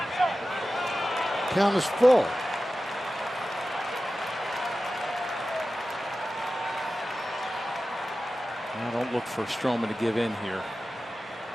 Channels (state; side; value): normal; both; correlation 0.94